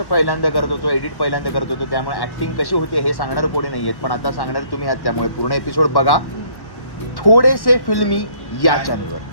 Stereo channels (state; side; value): late; right; 1.1 ms